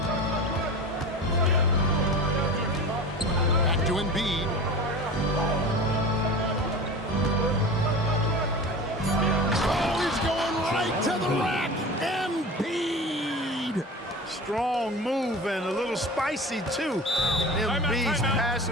Back to Embiid. Oh, he's going right to the rack. Embiid. Strong move and a little spicy, too. Embiid's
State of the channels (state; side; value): normal; both; correlation 0.33